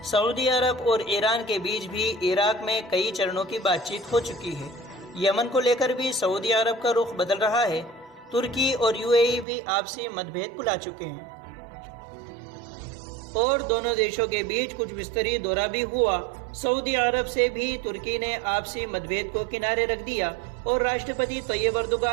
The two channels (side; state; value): left; drops out; at 9.5 s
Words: सऊदी अरब और ईरान के बीच भी इराक में कई चरणों की बातचीत हो चुकी है। यमन को लेकर भी सऊदी अरब का रुख बदल रहा है। तुर्की और यूएई भी आपसी मतभेद भुला चुके हैं और दोनों देशों के बीच कुछ विस्तरीय दौरा भी हुआ। सऊदी अरब से भी तुर्की ने आपसी मतभेद को किनारे रख दिया और राष्ट्रपति तैयब